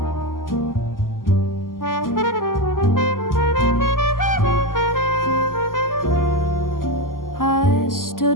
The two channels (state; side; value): late; right; 0.91 ms